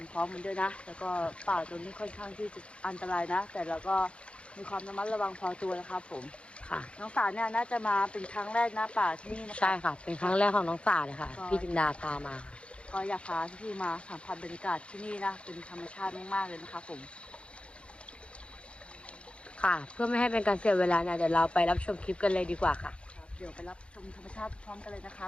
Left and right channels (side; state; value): right; late; 0.059 ms